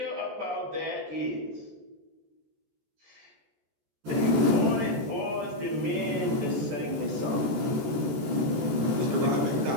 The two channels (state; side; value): late; left; 14 ms